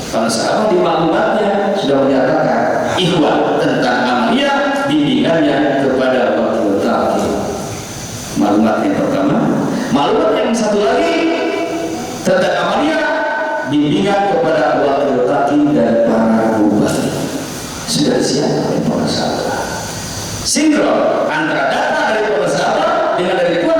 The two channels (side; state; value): both; identical; correlation 1.00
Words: Kalau sahabat di maklumatnya sudah menyatakan ikhwan tentang amaliyah, bimbingannya kepada wakil talqin. Maklumat yang pertama. Maklumat yang satu lagi tentang amaliyah, bimbingan kepada wakil talqin dan para mubalik. Sudah siap oleh para sahabat. Sinkron antara data dari para sahabat dengan dari Tuhan